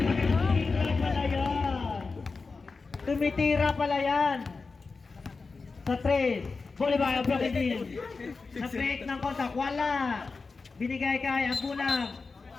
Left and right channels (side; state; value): right; quieter; 4.3 dB